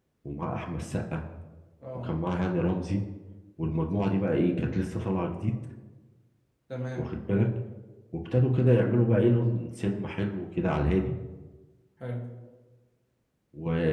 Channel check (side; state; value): both; identical; correlation 1.00